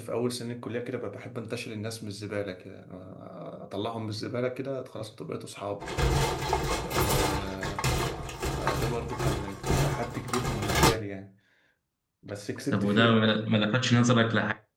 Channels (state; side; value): identical; both; correlation 1.00